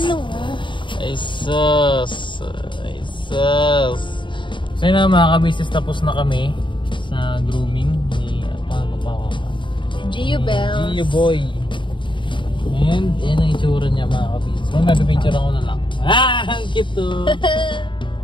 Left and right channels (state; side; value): late; right; 0.23 ms